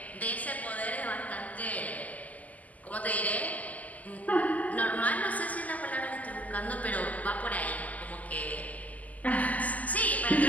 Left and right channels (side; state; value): right; late; 0.076 ms